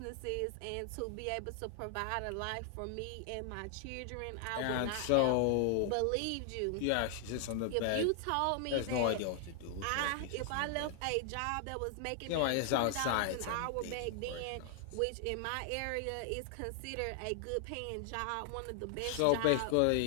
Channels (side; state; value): both; different; correlation 0.00